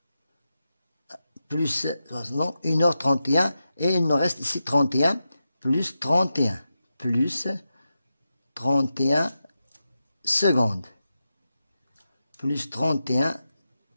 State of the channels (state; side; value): inverted; both; correlation -0.90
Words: plus, non, 1h31 et il nous reste ici 31 plus 31 plus 31 secondes. Plus 31